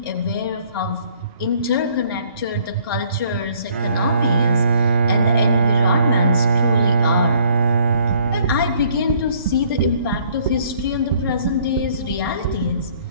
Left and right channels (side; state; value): both; inverted; correlation -0.61